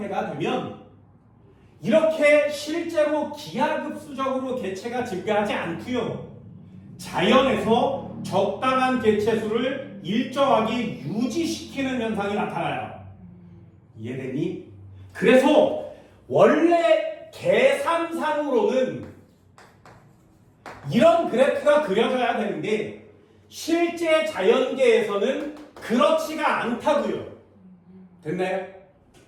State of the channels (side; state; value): both; identical; correlation 1.00